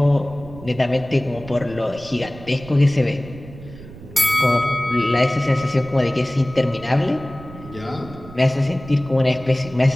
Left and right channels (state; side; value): noise; right; rumble, 16 dB below the sound